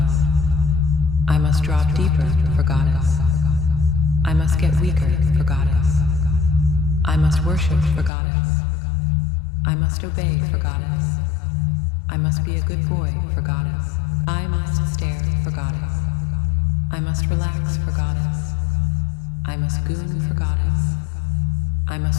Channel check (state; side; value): drops out; right; at 8.1 s